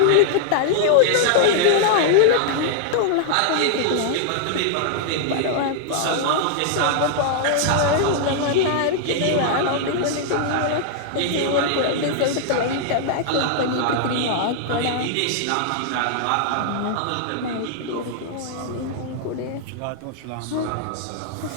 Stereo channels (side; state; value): both; different; correlation -0.01